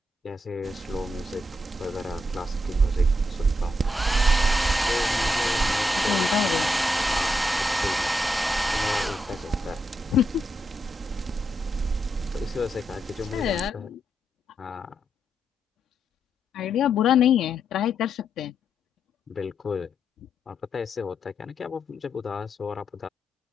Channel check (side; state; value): both; normal; correlation 0.81